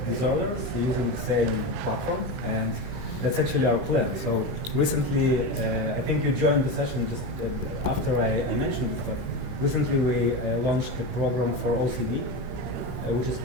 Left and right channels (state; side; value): late; left; 25 ms